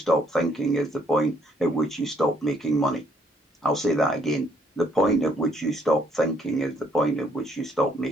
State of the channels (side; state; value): both; normal; correlation 0.68